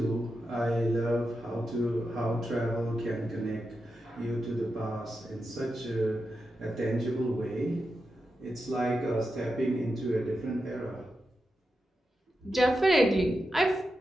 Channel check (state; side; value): normal; both; correlation 0.89